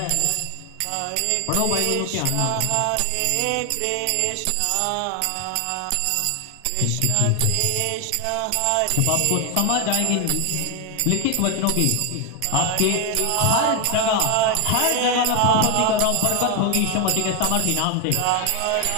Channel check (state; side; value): different; both; correlation 0.01